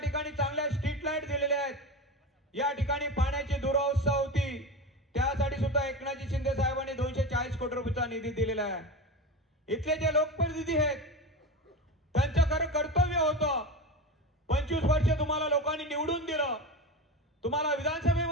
चांगल्या स्ट्रीट लाईट दिलेले आहेत. या ठिकाणी पाण्याची दुरावस्था होती, त्यासाठी सुद्धा एकनाथ शिंदे साहेबांनी 240 कोटी रुपयाचा निधी दिलेला आहे. इथले जे लोकप्रतिनिधी आहेत त्यांचं खरं कर्तव्य होतं. 25 वर्ष तुम्हाला लोकांनी निवडून दिलं, तुम्हाला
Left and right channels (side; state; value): both; normal; correlation 0.25